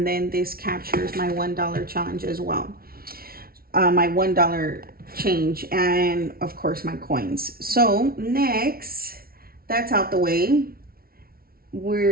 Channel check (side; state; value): left; late; 0.44 ms